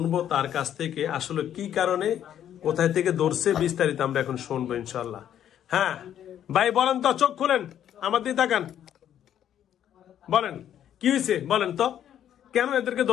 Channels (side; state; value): right; quieter; 10.3 dB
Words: তার কাছ থেকে আসলে কি কারণে, কোথায় থেকে ধরছে, বিস্তারিত আমরা এখন শুনবো ইনশাল্লাহ। হ্যাঁ ভাই বলেন তো, চোখ খুলেন, আমার দিকে তাকান, বলেন কি হয়েছে, বলেন তো কেন এদেরকে